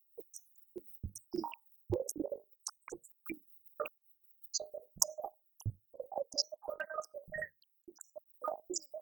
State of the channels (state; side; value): quieter; left; 7.1 dB